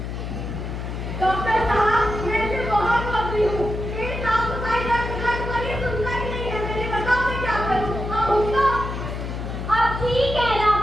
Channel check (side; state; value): left; noise; hum, 5 dB below the sound